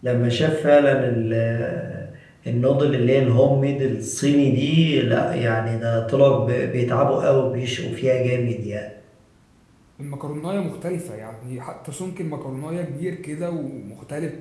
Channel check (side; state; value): both; identical; correlation 1.00